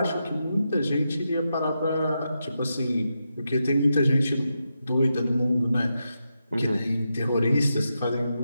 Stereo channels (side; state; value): both; inverted; correlation -0.87